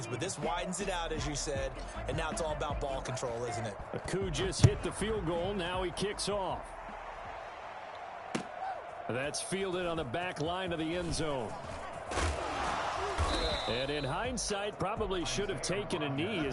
but this widens it out, as you said, and now it's all about ball control, isn't it? Aku just hit the field goal. Now he kicks off. That's fielded on the back line of the end zone. And in hindsight, probably should have taken a knee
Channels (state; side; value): identical; both; correlation 1.00